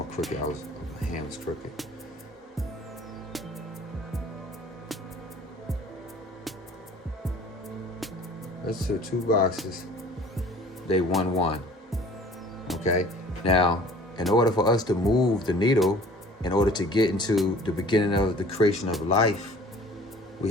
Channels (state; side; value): normal; both; correlation 0.49